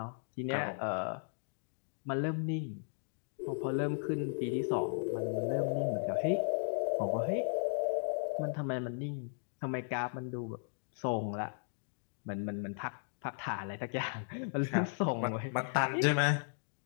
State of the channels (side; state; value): right; silent; digital silence